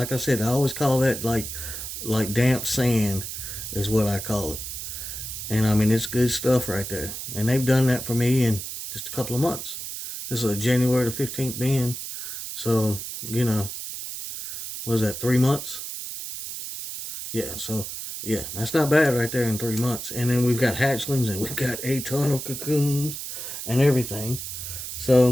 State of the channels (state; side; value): noise; right; hiss, 7 dB below the sound